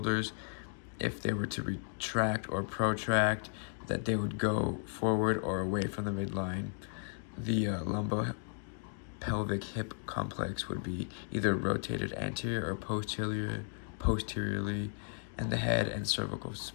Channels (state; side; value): silent; right; 54 dB below the other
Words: if they were to retract or protract, that they would go forward or away from the midline. The lumbopelvic hip complex would be either rotated anterior or posteriorly, and the head and cervical